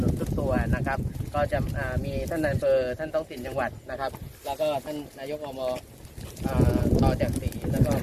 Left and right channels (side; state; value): both; identical; correlation 1.00